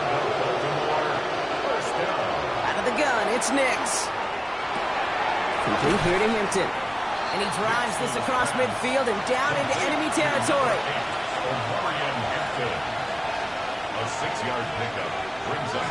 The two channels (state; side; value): identical; both; correlation 1.00